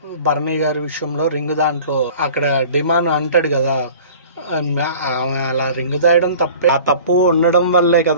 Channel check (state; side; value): inverted; both; correlation -0.45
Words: భరణి గారి విషయంలో రింగ్ దాంట్లో అక్కడ డిమాండ్ అంటాడు కదా, అలా రింగ్ దాయడం తప్పే, ఆ తప్పు ఉండడం వల్లే